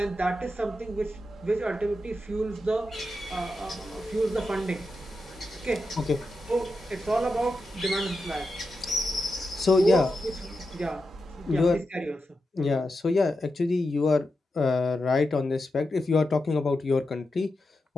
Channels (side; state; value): both; normal; correlation 0.89